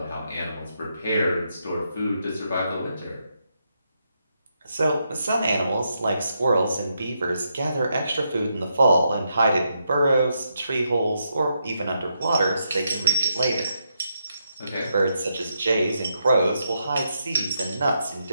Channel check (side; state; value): both; inverted; correlation -0.81